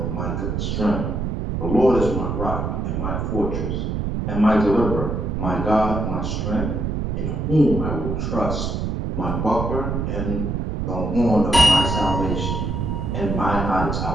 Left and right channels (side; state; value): right; noise; rumble, 2 dB below the sound